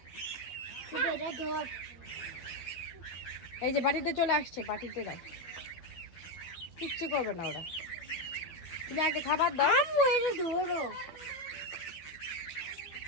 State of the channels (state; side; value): late; right; 12 ms